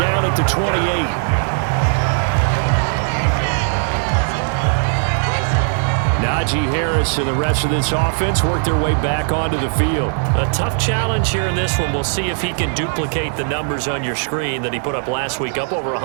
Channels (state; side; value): silent; left; 58 dB below the other